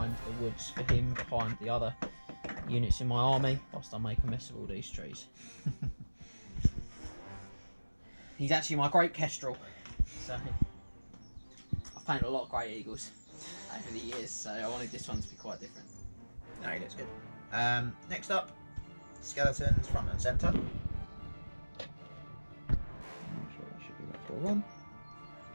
the woods for him, behind the other units in my army, whilst I make a mess of all these trees. He's actually my great kestrel, so I've painted a lot of great eagles over the years, so I wanted this one to be quite different. No, he looks good. Next up, skeletons front and centre. I'm sure it should be about 4-1.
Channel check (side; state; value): both; inverted; correlation -1.00